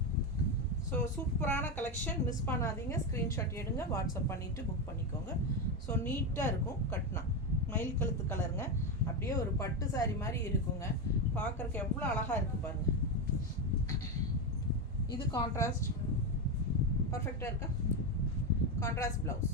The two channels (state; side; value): normal; both; correlation 0.11